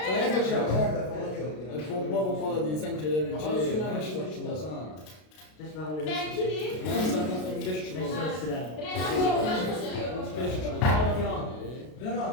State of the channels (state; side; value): late; right; 32 ms